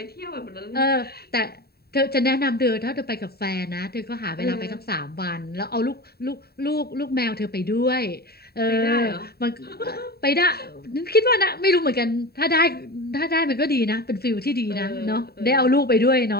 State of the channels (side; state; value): right; late; 0.46 ms